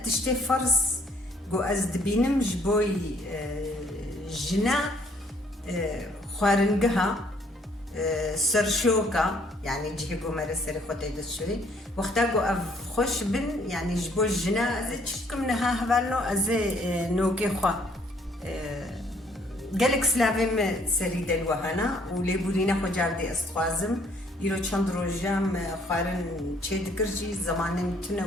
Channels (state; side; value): normal; both; correlation 0.64